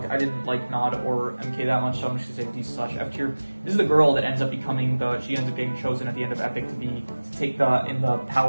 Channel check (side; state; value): both; inverted; correlation -1.00